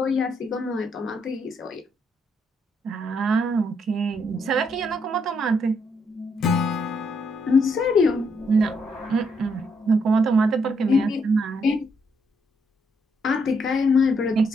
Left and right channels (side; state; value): both; normal; correlation 0.75